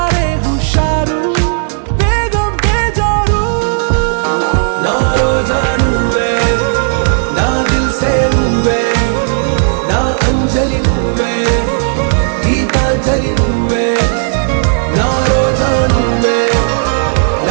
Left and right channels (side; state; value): left; silent; digital silence